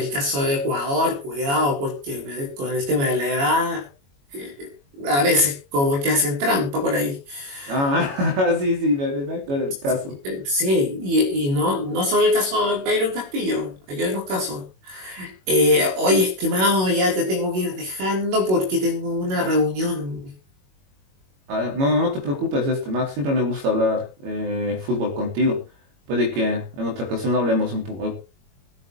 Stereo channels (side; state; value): left; late; 21 ms